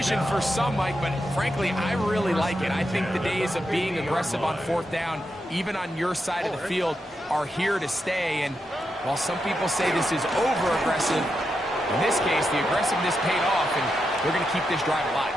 for some, Mike, but frankly, I really like it. I think the days of being aggressive on 4th down, even on your side of the field, are here to stay. And while some people say this is over-aggressive, in this case, the aggressiveness paid off, and they're going to keep this drive alive.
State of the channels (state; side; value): normal; both; correlation 0.85